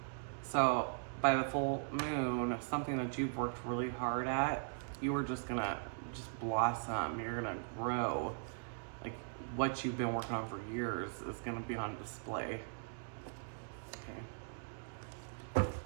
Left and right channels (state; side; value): silent; left; digital silence